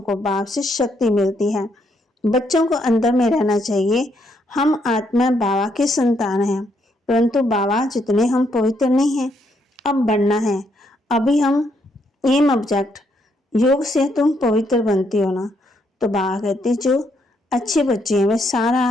को बाप से शक्ति मिलती है। बच्चों को अंदर में रहना चाहिए, हम आत्मा बाबा के संतान हैं, परंतु बाबा जितने हम पवित्र नहीं हैं, अब बनना है। अभी हम एम ऑब्जेक्ट योग से तुम पवित्र बनती हो ना। तो बाबा कहते जो अच्छे बच्चे हैं वे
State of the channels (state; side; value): normal; both; correlation 0.74